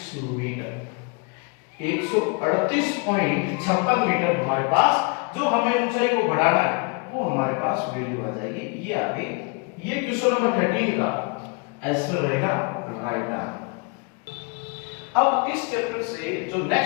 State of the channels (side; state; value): right; quieter; 31.8 dB